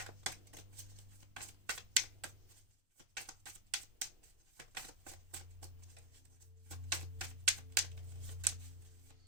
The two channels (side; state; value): left; late; 2.7 ms